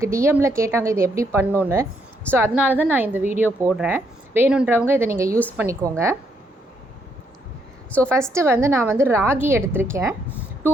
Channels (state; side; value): normal; both; correlation 0.74